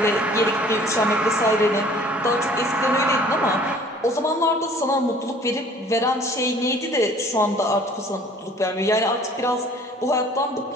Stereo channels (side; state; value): both; normal; correlation 0.52